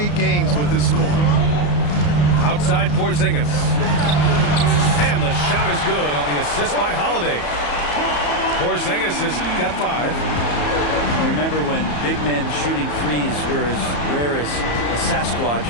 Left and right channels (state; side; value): late; right; 34 ms